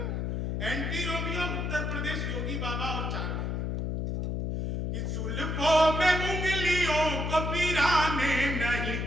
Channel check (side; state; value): left; noise; hum, 1 dB below the sound